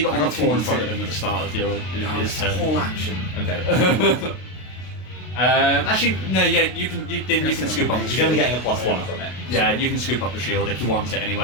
it on the got floor in 2d6. front of him at the start of his turn. Whole action. Okay. Actually, no. Yeah, you can. You can scoop up the You're shield. only getting a +1 from it. Yeah, you can scoop up the shield if you want it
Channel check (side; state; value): right; late; 32 ms